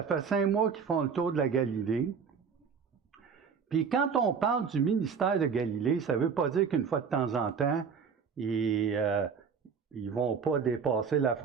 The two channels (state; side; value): quieter; left; 6.2 dB